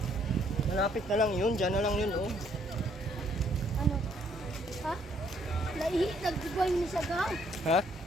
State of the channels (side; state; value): both; normal; correlation 0.67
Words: Malapit na lang yun. Diyan na lang yun oh. Ano? Ha? Naihi, nagdugay ni siya ka. Ha?